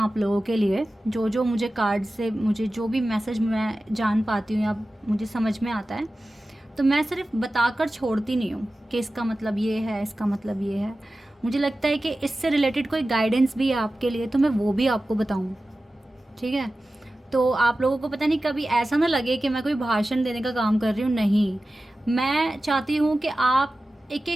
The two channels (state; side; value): normal; both; correlation 0.95